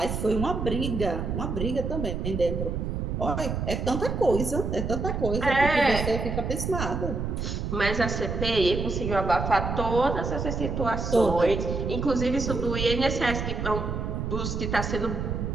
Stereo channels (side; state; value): right; noise; rumble, 3 dB below the sound